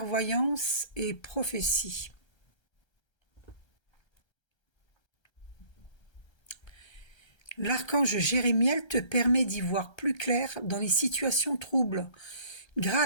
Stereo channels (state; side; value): late; right; 1.3 ms